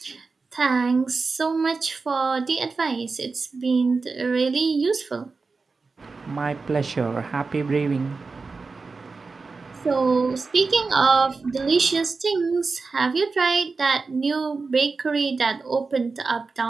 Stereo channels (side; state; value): left; quieter; 4.2 dB